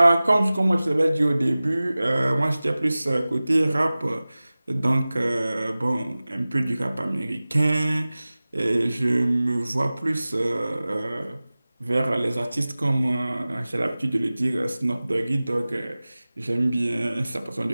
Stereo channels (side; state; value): both; inverted; correlation -0.98